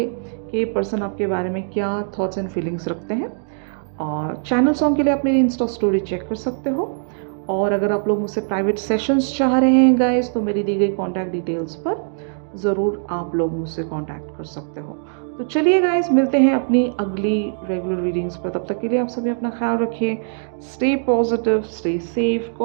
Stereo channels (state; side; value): silent; left; digital silence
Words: कि ये पर्सन आपके बारे में क्या थॉट्स एंड फीलिंग्स रखते हैं। और चैनल सॉन्ग के लिए आप मेरी इंस्टा स्टोरी चेक कर सकते हो। और अगर आप लोग मुझसे प्राइवेट सेशंस चाह रहे हैं गाइस, तो मेरी दी गई कॉन्टैक्ट डिटेल्स पर ज़रूर आप लोग मुझसे कॉन्टैक्ट कर सकते हो। तो चलिए गाइस, मिलते हैं अपनी अगली रेगुलर रीडिंग्स पर। तब तक के लिए आप सभी अपना ख्याल रखिए। Stay positive, stay safe,